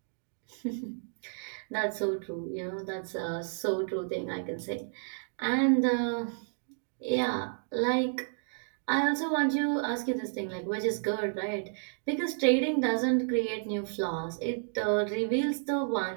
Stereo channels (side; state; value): left; silent; digital silence